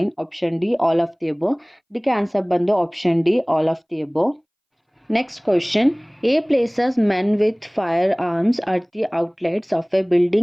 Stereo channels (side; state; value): both; identical; correlation 1.00